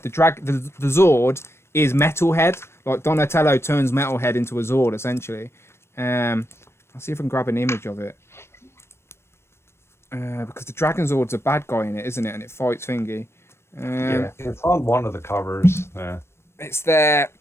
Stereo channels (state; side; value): late; right; 0.12 ms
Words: the Zord is Metalhead. Like Donatello turns Metalhead into a Zord essentially. I'll see if I can grab an image of it. Because the Dragon Zord's a bad guy in it, isn't it? And it fights Thingy. Yeah, it's on one of the covers. Yeah. It's there.